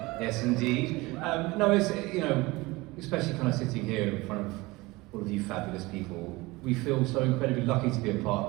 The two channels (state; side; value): quieter; left; 22.2 dB